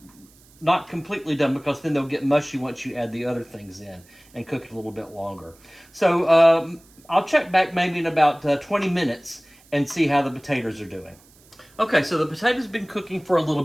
Not completely done, because then they'll get mushy once you add the other things in and cook it a little bit longer. So I'll check back maybe in about 20 minutes and see how the potatoes are doing. Okay, so the potatoes have been cooking for a little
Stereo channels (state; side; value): noise; right; hiss, 28 dB below the sound